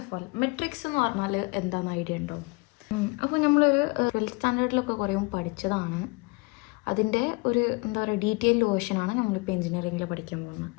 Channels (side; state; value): right; quieter; 27.9 dB